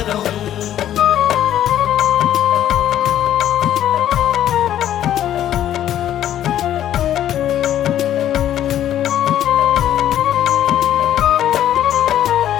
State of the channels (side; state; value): right; quieter; 11.5 dB